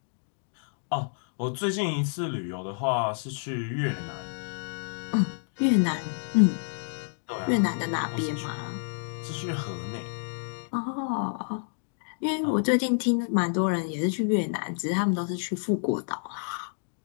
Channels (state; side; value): silent; right; digital silence